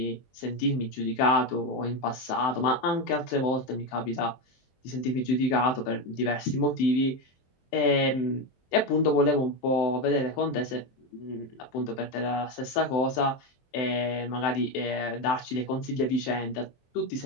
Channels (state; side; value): late; right; 23 ms